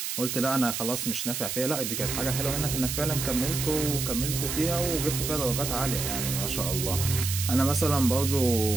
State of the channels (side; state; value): right; noise; hiss, 3 dB below the sound